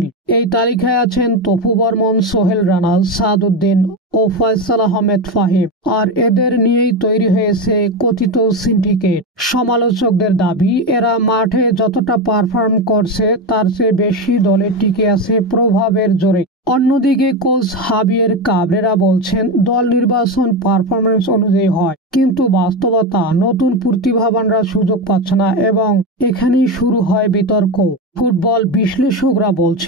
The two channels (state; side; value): normal; both; correlation 0.15